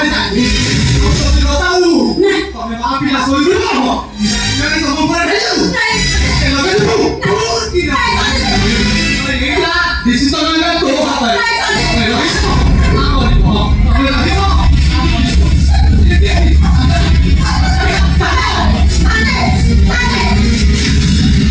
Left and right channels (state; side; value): identical; both; correlation 1.00